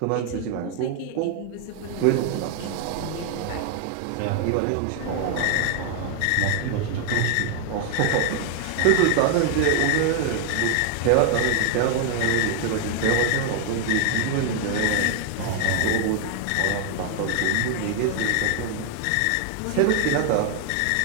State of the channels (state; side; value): different; both; correlation 0.00